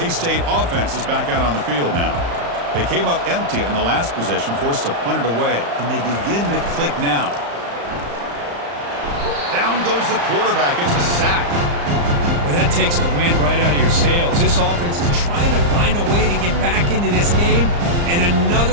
offense is back out on the field now. They came up empty on the last possession, forced to punt it away, and they begin to click now. Down goes the quarterback. It's a sack. Well, that takes the wind right out of your sails. This offense is trying to find a way to get back into this game, and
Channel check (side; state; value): left; late; 35 ms